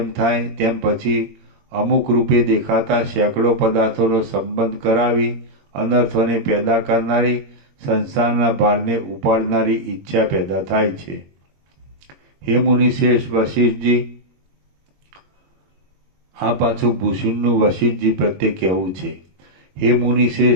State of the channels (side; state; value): left; late; 21 ms